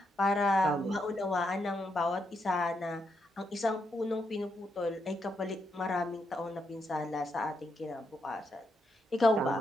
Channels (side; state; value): both; normal; correlation 0.81